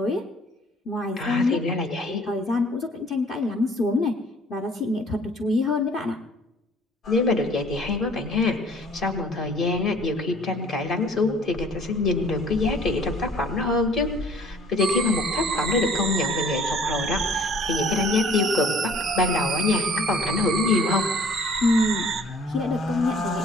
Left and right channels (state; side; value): normal; both; correlation 0.53